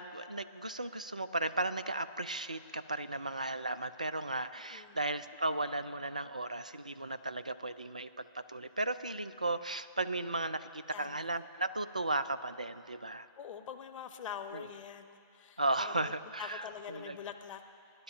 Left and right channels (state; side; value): inverted; both; correlation -0.63